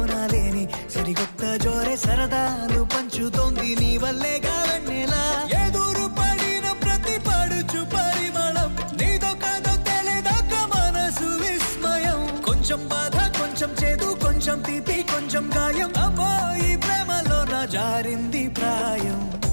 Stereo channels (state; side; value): inverted; both; correlation -1.00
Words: లేని సరికొత్త జోరే సరదాలు పంచుతోంది నీ వల్లేగా వెన్నెలా ఎదురు పడిన ప్రతి పడుచు పరిమళం నీదో కాదో తెలియదాక మనసు విస్మయం కొంచెం బాధ కొంచెం చేదు కొంచెం తీపి కొంచెం గాయం అమ్మో ఈ ప్రేమలో నా జారింది ప్రాయం